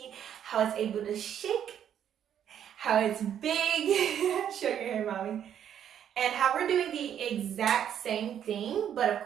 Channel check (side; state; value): left; quieter; 9.5 dB